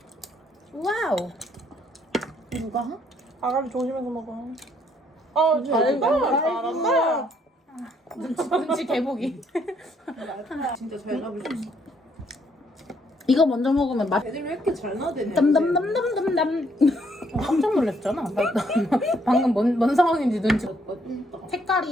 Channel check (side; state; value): both; normal; correlation 0.69